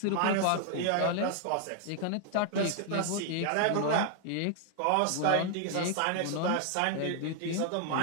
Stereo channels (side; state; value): both; different; correlation 0.00